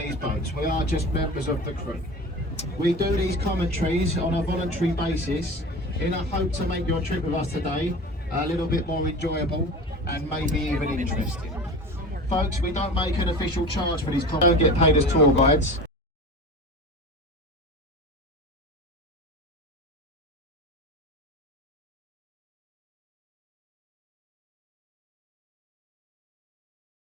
boats. We are just members of the crew. We do these commentaries on a voluntary basis in a hope to make your trip with us today a little bit more enjoyable and maybe even interesting. Folks, we don't make an official charge for these commentaries. We don't get paid as tour guides.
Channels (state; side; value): normal; both; correlation 0.34